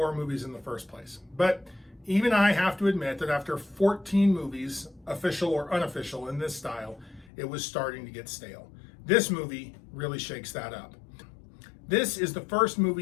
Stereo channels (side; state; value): right; drops out; at 7.3 s